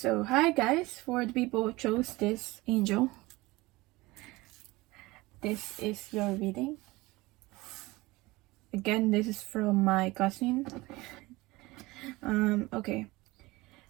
hi guys. For the people who chose this angel, this is your reading. Again, this is from my cousin. Okay.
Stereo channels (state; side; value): quieter; left; 21.1 dB